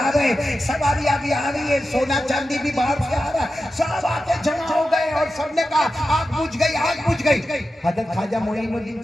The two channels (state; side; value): normal; both; correlation 0.92